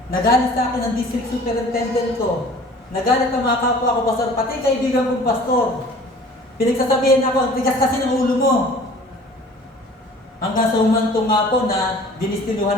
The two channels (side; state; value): both; normal; correlation 0.48